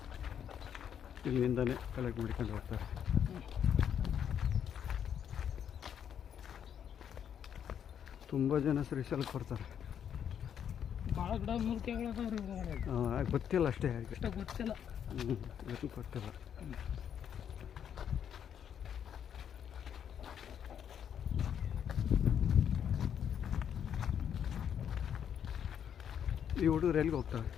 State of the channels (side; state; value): right; quieter; 8.7 dB